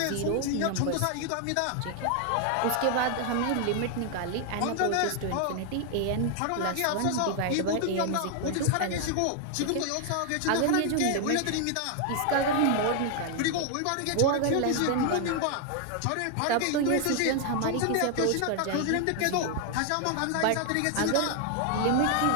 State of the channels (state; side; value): different; both; correlation 0.00